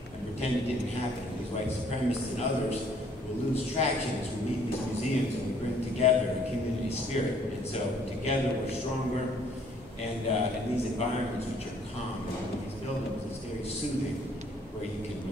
pretend it didn't happen. These white supremacists and others will lose traction as we meet these museums and we bring together a community spirit. And so together we're stronger, and in these environments which are calm, in these buildings, it's very soothing, where you can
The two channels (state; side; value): normal; both; correlation 0.61